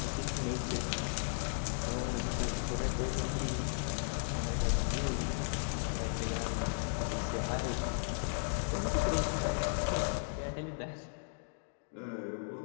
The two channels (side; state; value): right; silent; digital silence